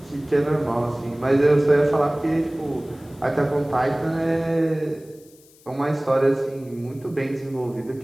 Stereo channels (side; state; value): left; noise; hiss, 27 dB below the sound